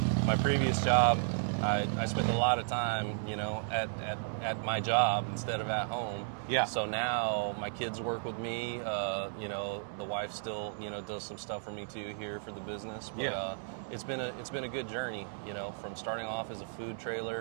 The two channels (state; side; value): silent; left; digital silence